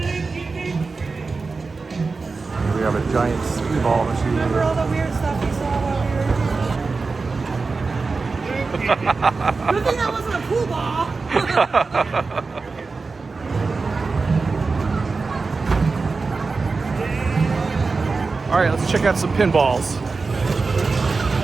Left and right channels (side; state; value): left; quieter; 4.2 dB